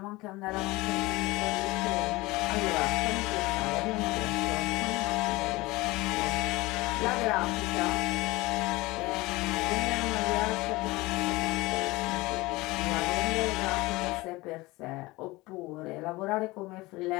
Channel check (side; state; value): right; quieter; 21.3 dB